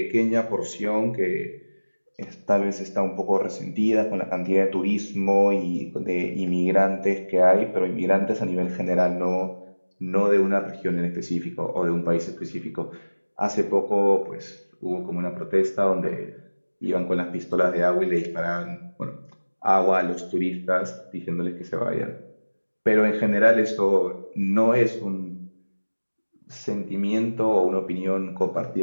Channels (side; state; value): both; inverted; correlation -1.00